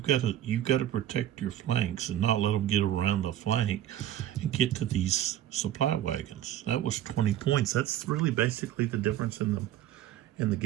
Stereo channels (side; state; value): left; quieter; 12.2 dB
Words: got to protect your flanks and not let them get around the flank and get to these supply wagons. That was 20 points. That's really basically the difference in the